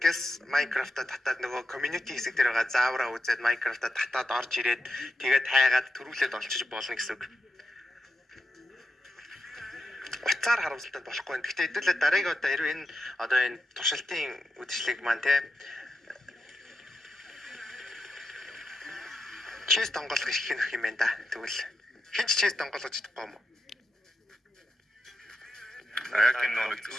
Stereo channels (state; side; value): normal; both; correlation 0.88